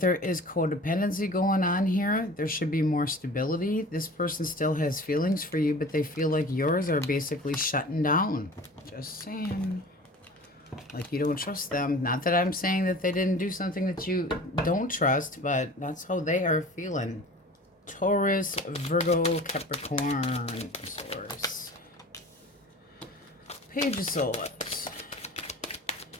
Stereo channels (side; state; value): both; normal; correlation 0.41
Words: is codependency going on here. There should be more stability. This person still has feelings for you, but they feel like yours are basically shutting down. Just saying. Like you don't trust them. Not that I'm saying that they didn't do something that you don't trust, but that's how they are feeling. Taurus, Virgo, Capricorn, Source. Page of Swords.